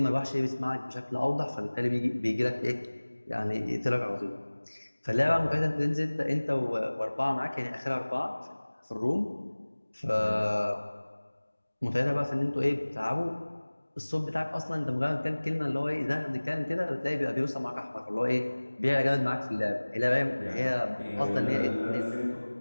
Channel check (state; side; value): inverted; both; correlation -1.00